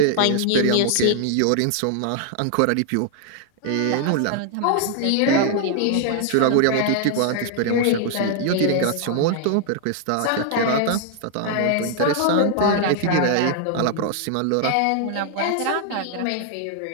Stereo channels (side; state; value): both; different; correlation 0.00